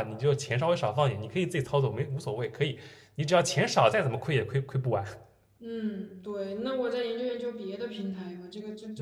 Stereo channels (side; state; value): both; identical; correlation 1.00